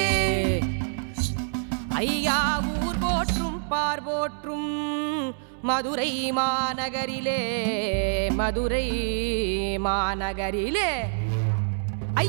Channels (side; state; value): left; silent; 61 dB below the other